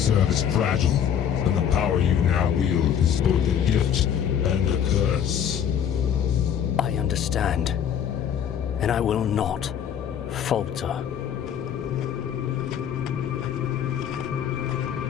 is fragile, and the power you now wield is both a gift and a curse. I understand, and I will not falter.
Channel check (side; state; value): right; quieter; 8.8 dB